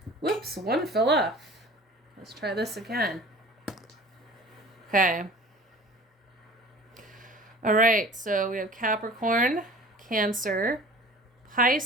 Whoops, one fell off. Let's try this again. Okay. All right, so we have Capricorn, Cancer,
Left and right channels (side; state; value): both; normal; correlation 0.44